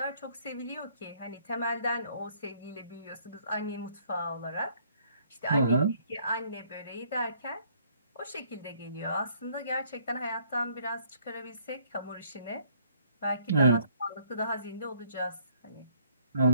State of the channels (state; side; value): inverted; both; correlation -0.64